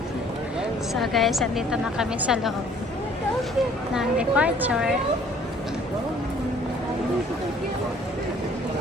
So, guys, andito na kami sa loob ng departure.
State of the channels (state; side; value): normal; both; correlation 0.57